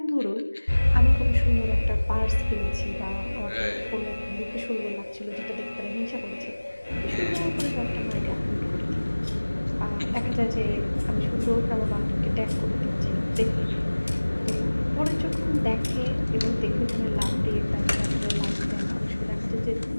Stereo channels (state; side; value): inverted; both; correlation -1.00